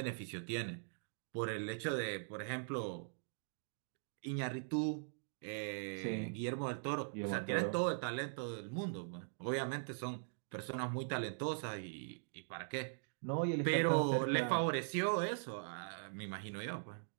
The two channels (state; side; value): silent; left; digital silence